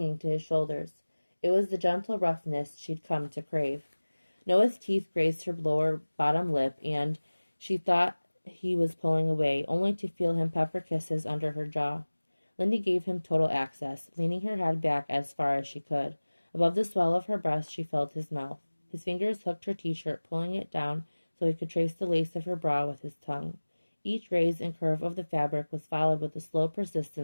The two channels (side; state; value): both; inverted; correlation -1.00